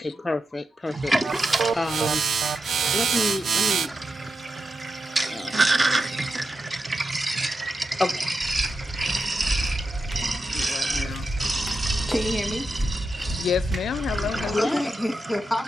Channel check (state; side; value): normal; both; correlation 0.88